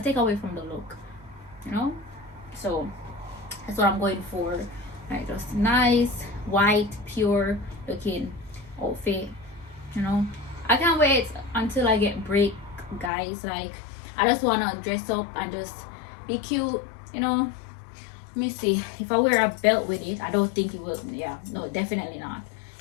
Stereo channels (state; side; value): drops out; right; at 13.1 s